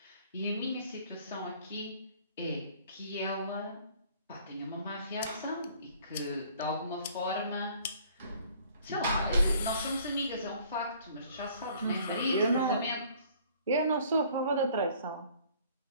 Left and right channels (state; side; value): inverted; both; correlation -0.56